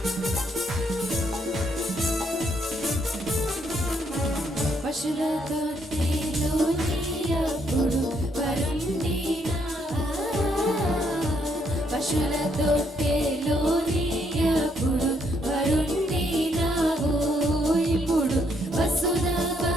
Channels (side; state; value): both; normal; correlation 0.73